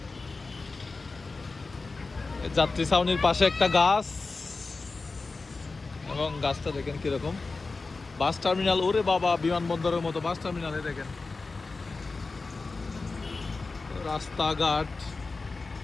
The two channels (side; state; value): right; quieter; 3.9 dB